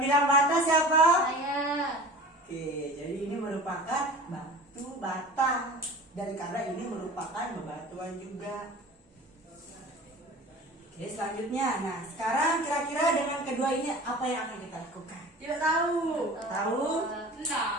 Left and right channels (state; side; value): normal; both; correlation 0.39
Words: bilang bata siapa? Saya. Oke, jadi ini merupakan batu bata dan karena ini merupakan bebatuan juga. Oke, selanjutnya, nah sekarang kira-kira dengan kedua ini apa yang akan kita lakukan? Tidak tahu. Tahu?